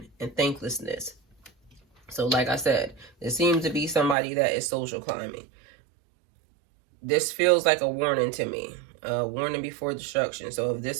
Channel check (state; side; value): drops out; left; at 4.2 s